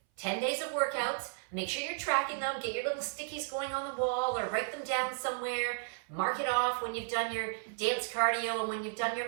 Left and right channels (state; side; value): silent; left; 55 dB below the other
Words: 10 days of workouts. Make sure you're tracking them. Get your little stickies going on the wall or write them down somewhere. Mark it off when you've done your dance cardio and when you've done